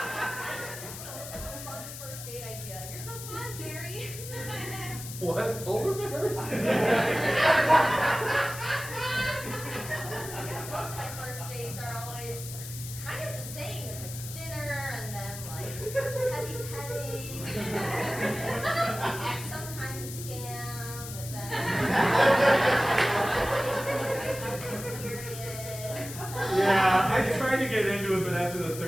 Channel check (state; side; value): noise; left; hiss, 10 dB below the sound